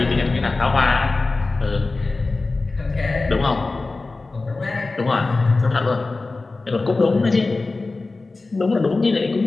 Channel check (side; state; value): right; quieter; 3.5 dB